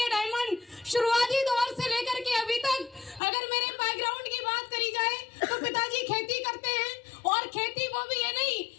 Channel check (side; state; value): right; drops out; at 3.2 s